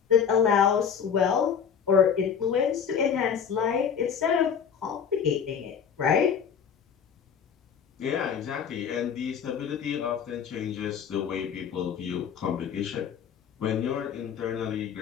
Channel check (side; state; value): right; quieter; 7.5 dB